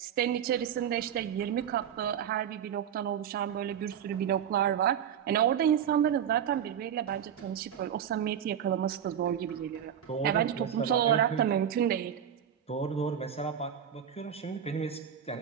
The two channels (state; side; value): quieter; left; 9.1 dB